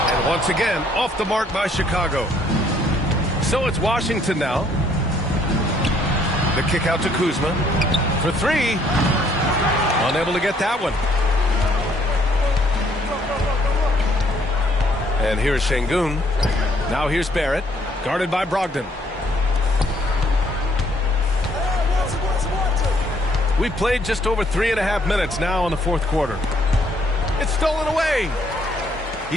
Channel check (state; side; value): normal; both; correlation 0.66